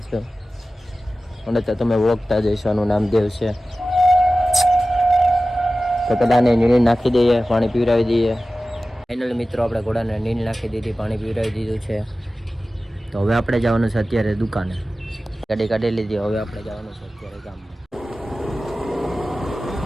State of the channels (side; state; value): both; normal; correlation 0.96